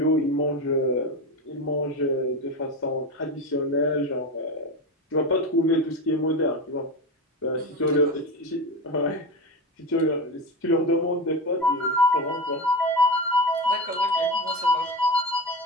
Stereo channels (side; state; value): both; normal; correlation 0.21